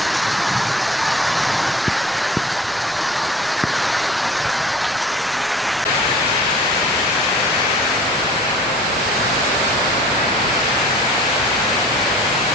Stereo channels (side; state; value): right; noise; rumble, 25 dB below the sound